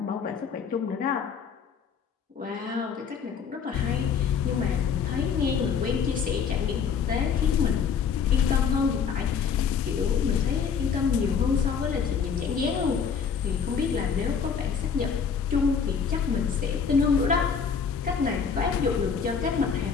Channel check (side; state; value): right; quieter; 6.5 dB